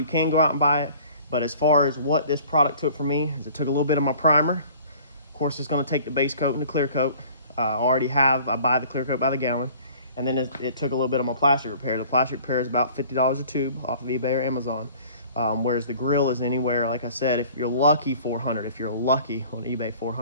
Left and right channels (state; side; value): inverted; both; correlation -0.49